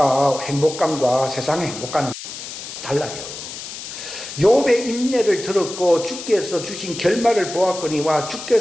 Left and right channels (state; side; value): noise; left; hiss, 10 dB below the sound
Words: 세상의 행복감은 달라요. 욥의 인내를 들었고 주께서 주신 결말을 보았거니와